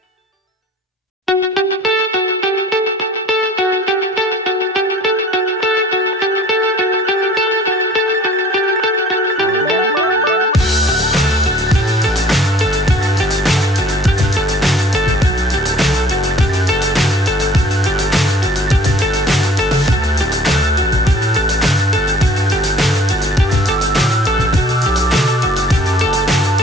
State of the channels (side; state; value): both; normal; correlation 0.51